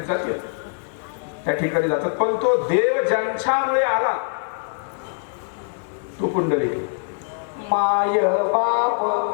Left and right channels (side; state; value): right; silent; 64 dB below the other